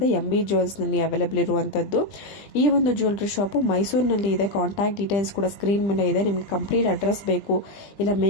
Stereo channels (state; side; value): late; right; 20 ms